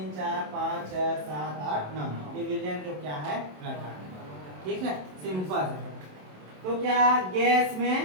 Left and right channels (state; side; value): late; left; 27 ms